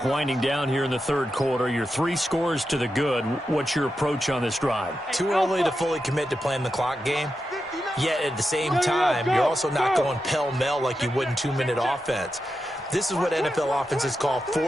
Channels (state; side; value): normal; both; correlation 0.89